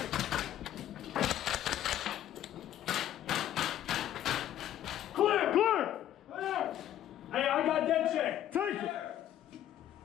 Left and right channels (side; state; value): right; quieter; 11.9 dB